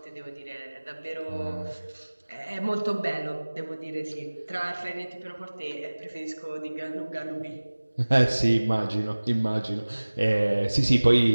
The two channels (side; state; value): both; inverted; correlation -1.00